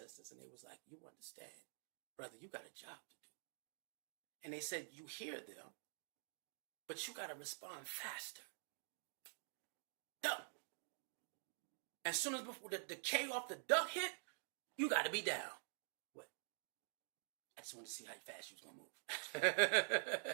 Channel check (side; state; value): left; silent; digital silence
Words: and they was like, "You understand, brother, you got a job to do." And they said, "You hear them, but you got to respond faster." Duck. As soon as before the K off the duck hit, you got to be down. What? I just wanted to see how fast you was going to